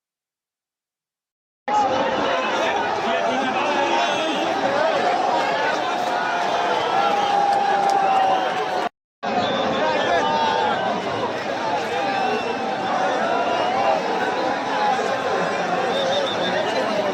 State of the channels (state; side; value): identical; both; correlation 1.00